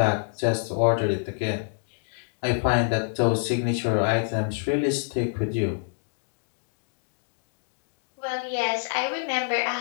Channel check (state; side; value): silent; right; digital silence